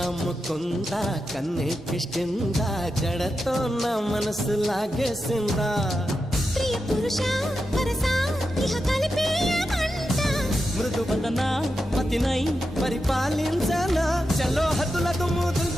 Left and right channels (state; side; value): normal; both; correlation 0.89